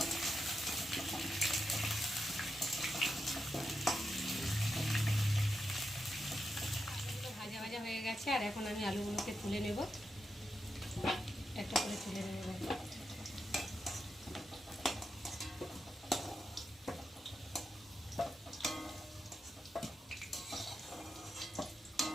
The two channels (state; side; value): normal; both; correlation 0.87